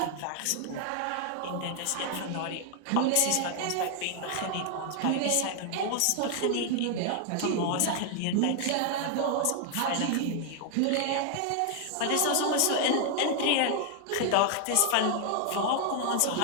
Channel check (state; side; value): different; both; correlation 0.00